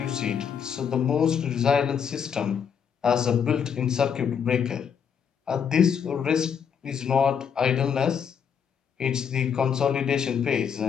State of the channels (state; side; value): quieter; right; 7.4 dB